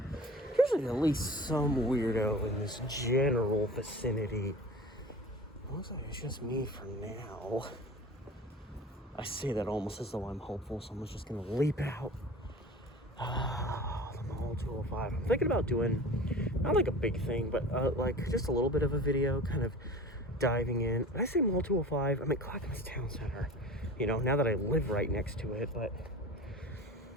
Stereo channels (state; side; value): normal; both; correlation 0.38